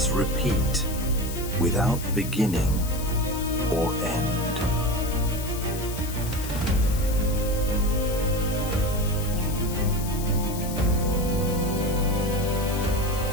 repeat without beginning or end.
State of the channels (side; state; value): left; noise; hiss, 11 dB below the sound